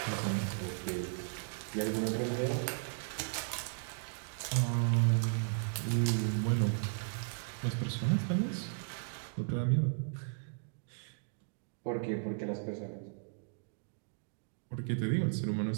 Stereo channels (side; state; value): left; silent; digital silence